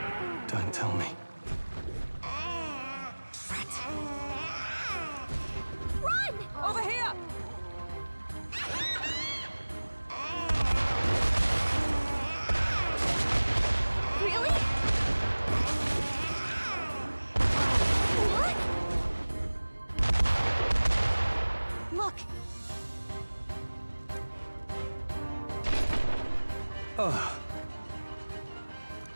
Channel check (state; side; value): inverted; both; correlation -1.00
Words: Don't tell me. Run! Over here! Really? What? Look,